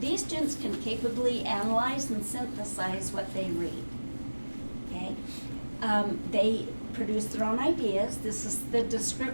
these students can capably analyze and synthesize what they read. Okay? They produce their own ideas. This is the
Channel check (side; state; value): both; inverted; correlation -1.00